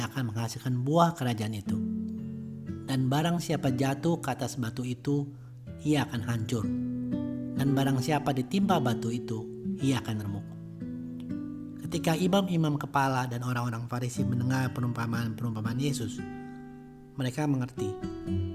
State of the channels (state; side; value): identical; both; correlation 1.00